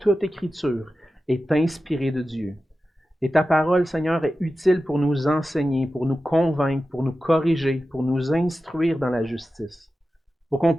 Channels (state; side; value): normal; both; correlation 0.93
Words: écriture est inspirée de Dieu. Et ta parole, Seigneur, est utile pour nous enseigner, pour nous convaincre, pour nous corriger, pour nous instruire dans la justice, pour qu'on